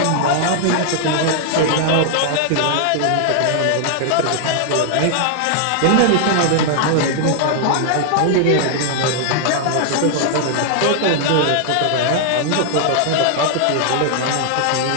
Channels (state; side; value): different; both; correlation 0.00